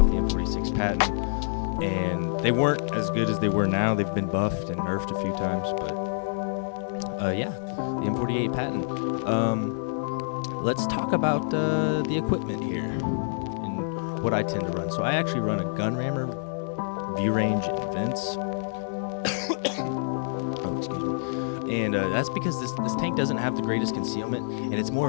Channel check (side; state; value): right; silent; digital silence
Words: the M46 Patton, and they weren't as good as they were now. They've been buffed and nerfed a few times, but yeah, the M48 Patton. Let's talk about the equipment here and what I tend to run. So I actually run a gun rammer, view range, and vents. Oh, excuse me. And that's because this tank doesn't have the greatest concealment, and it's more